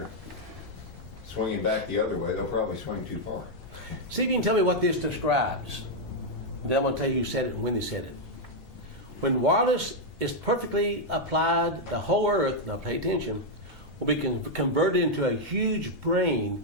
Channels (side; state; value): both; normal; correlation -0.01